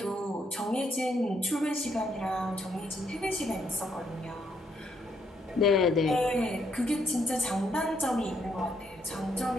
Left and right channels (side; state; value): both; normal; correlation 0.73